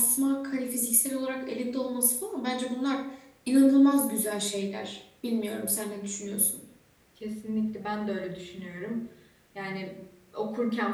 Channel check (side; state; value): both; identical; correlation 1.00